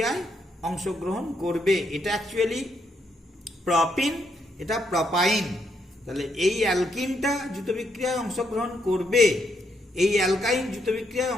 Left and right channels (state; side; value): normal; both; correlation 0.77